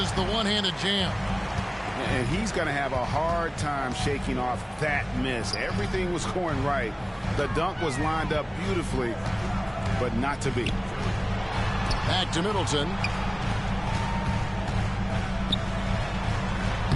the one-handed jam. And he's going to have a hard time shaking off that miss. Everything was going right. The dunk was lined up beautifully, but not to be. Back to Middleton.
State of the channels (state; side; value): identical; both; correlation 1.00